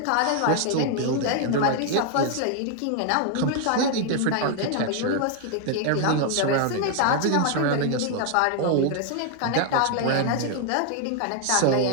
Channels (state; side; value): different; both; correlation 0.00